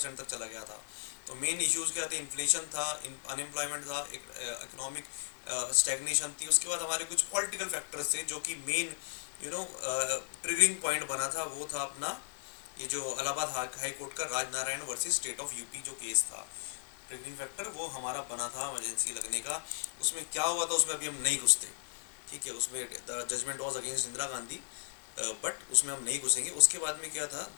तक चला गया था। तो मेन इश्यूज़ क्या थे? इन्फ्लेशन था, अनएम्प्लॉयमेंट था, इकोनॉमिक स्टैग्नेशन थी। उसके बाद हमारे कुछ पॉलिटिकल फैक्टर्स थे जो कि मेन ट्रिगरिंग पॉइंट बना था। वो था अपना ये जो इलाहाबाद हाई कोर्ट का Rajnarayan versus state of UP जो केस था। ट्रिगरिंग फैक्टर वो हमारा बना था इमरजेंसी लगने का। उसमें क्या हुआ था उसमें अभी हम नहीं घुसते, ठीक है। उसमें the judgement was against Indira Gandhi, but उसमें हम नहीं घुसेंगे। उसके बाद में क्या था?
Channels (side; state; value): right; silent; digital silence